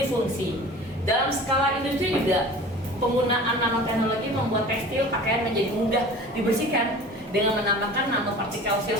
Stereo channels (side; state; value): both; normal; correlation 0.41